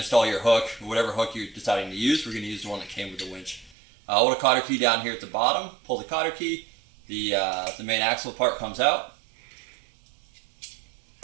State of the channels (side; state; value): left; drops out; at 3.8 s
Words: install your hook, whatever hook you're deciding to use. We're going to use the one that came with the winch. Hold a cotter key down here at the bottom. Pull the cotter key. The main axle part comes out.